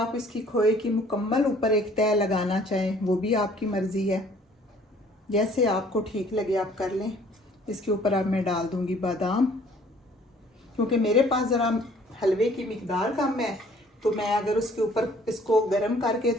इसकी खोए की मुकम्मल ऊपर एक तय लगाना चाहें वो भी आपकी मर्ज़ी है, जैसे आपको ठीक लगे आप कर लें। इसके ऊपर अब मैं डाल दूंगी बादाम, क्योंकि मेरे पास ज़रा हलवे की मिकदार कम है, तो मैं अगर उसके ऊपर इसको गर्म करके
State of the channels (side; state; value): both; normal; correlation 0.57